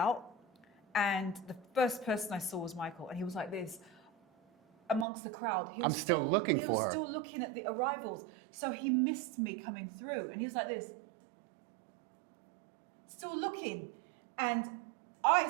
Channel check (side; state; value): left; drops out; at 5.1 s